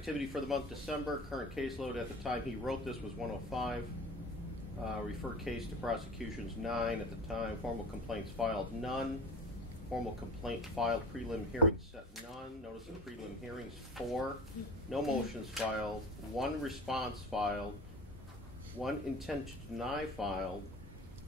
for the month December. Current caseload at the time he wrote this was 105. Referred case to prosecutions 9 at the time. Formal complaints filed none. formal complaint filed, prelim hearing set none, notice of prelim hearings 4, no motions filed, 1 response filed, 1 intent to deny filed,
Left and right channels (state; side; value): normal; both; correlation 0.37